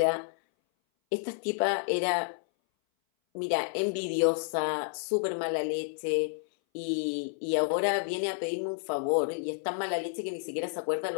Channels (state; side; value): silent; right; 58 dB below the other